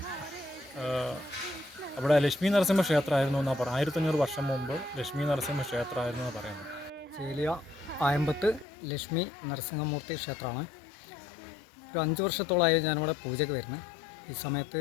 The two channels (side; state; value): right; drops out; at 8.7 s